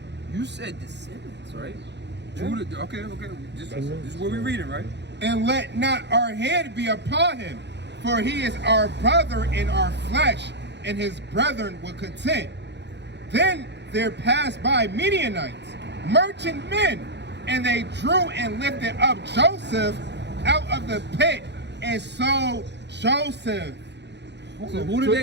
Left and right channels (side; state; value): left; late; 0.50 ms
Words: You said descendants, right? Judah, okay. This is what we're reading, right? And let not our hand be upon him, for he is our brother in our flesh, and his brethren were content. Then there passed by Midianites, merchant men, and they drew and lifted up Joseph out of the pit and sold Joseph. So who did